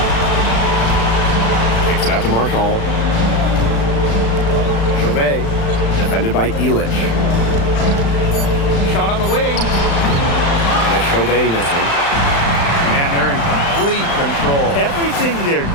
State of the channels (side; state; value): right; late; 35 ms